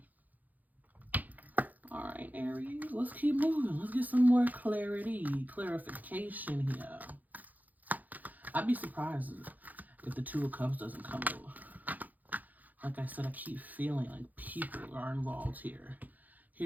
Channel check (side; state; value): left; late; 0.082 ms